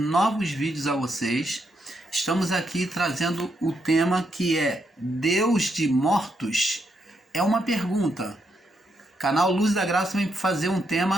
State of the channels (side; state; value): both; normal; correlation 0.79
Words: vídeos a vocês. Estamos aqui trazendo o tema que é Deus de mortos? É uma pergunta. Canal Luzes da Graça vem fazer um